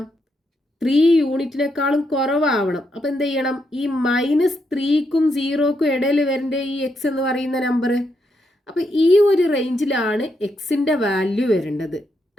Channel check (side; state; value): both; normal; correlation 0.80